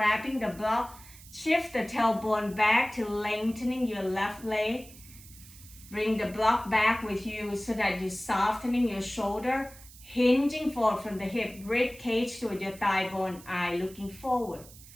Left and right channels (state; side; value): noise; right; hiss, 20 dB below the sound